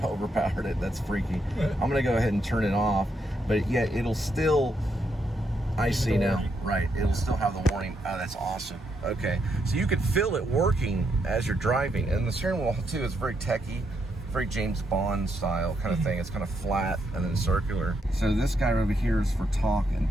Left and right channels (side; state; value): both; normal; correlation 0.78